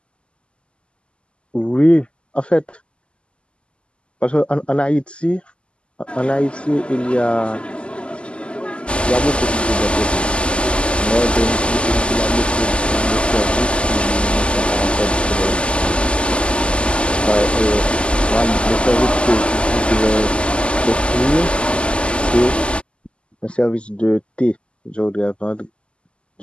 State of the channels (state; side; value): late; right; 0.052 ms